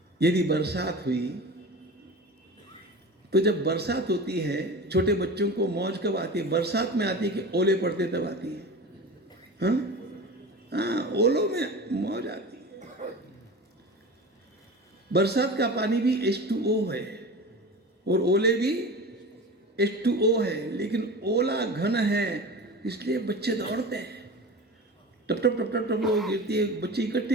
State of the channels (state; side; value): normal; both; correlation 0.32